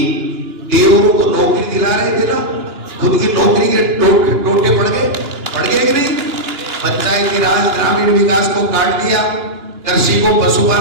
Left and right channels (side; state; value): left; late; 2.9 ms